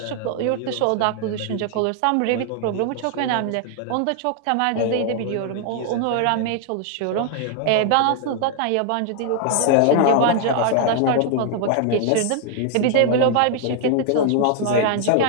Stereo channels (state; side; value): different; both; correlation 0.00